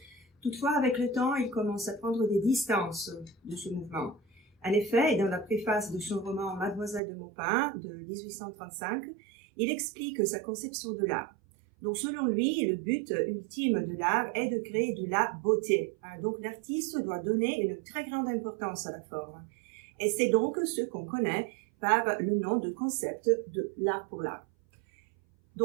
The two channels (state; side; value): drops out; left; at 7.0 s